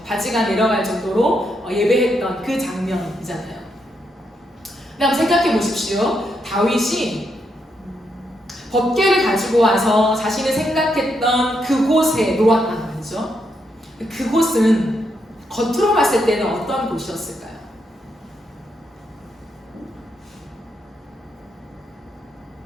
바지가 내려갈 정도로 예배했던 그 장면이잖아요. 근데 한번 생각해 보십시오. 다윗이 법궤를 가지고 와서 자신이 생각했던 그곳에 놓았단 말이죠. 그곳은 겉으로 봤을 때는 어떤 곳이었을까요?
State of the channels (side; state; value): both; normal; correlation 0.80